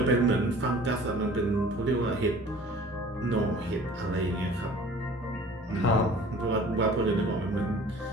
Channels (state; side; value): normal; both; correlation 0.47